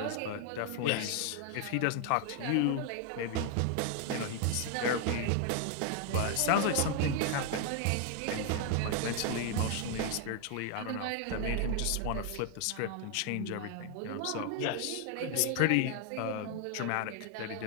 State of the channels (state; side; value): different; both; correlation 0.00